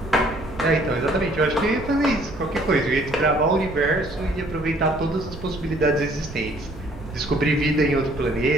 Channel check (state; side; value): noise; right; rumble, 14 dB below the sound